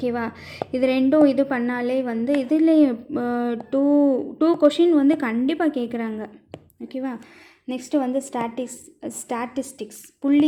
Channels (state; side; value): identical; both; correlation 1.00